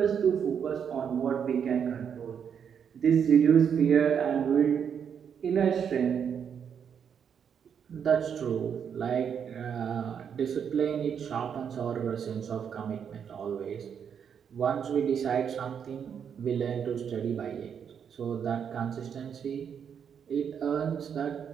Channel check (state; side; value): quieter; left; 7.6 dB